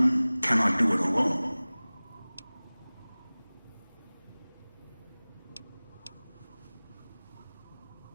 cannot do it alone.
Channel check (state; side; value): inverted; both; correlation -1.00